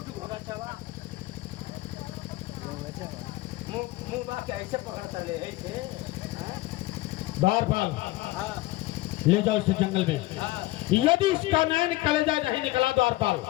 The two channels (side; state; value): right; quieter; 18.9 dB